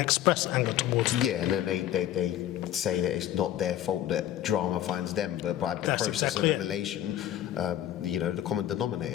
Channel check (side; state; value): right; quieter; 12.1 dB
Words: anger towards them. Yeah, and then they say that it's not their fault that drama finds them, but by the process of elimination, the common